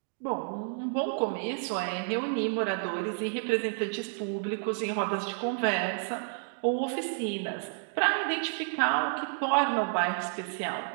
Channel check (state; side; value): silent; left; digital silence